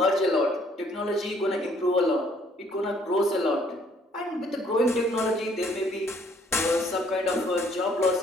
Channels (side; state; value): both; normal; correlation 0.63